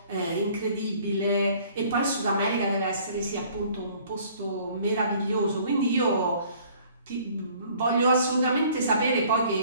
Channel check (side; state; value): both; inverted; correlation -0.55